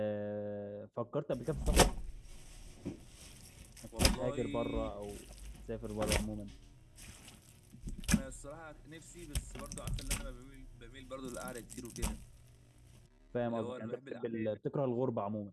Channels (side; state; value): both; identical; correlation 1.00